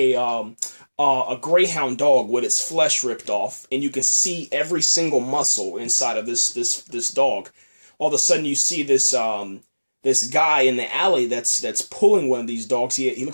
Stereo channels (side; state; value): both; inverted; correlation -1.00